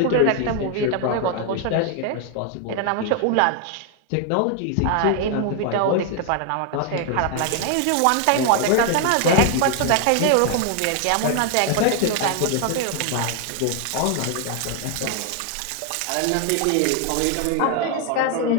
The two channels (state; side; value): different; both; correlation 0.00